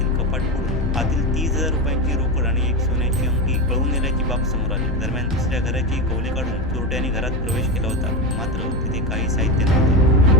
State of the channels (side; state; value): both; normal; correlation 0.17